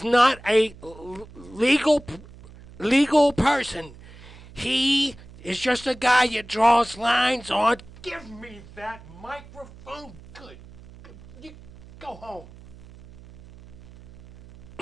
not a legal person. He is just a guy that draws lines on. Give me that microphone. Good. You go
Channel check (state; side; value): noise; right; hum, 20 dB below the sound